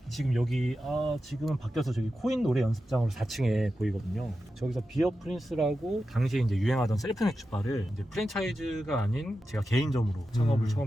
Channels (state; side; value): normal; both; correlation 0.91